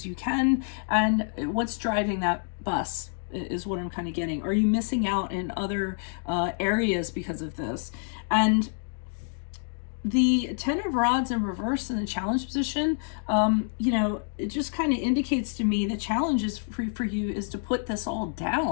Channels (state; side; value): silent; right; 60 dB below the other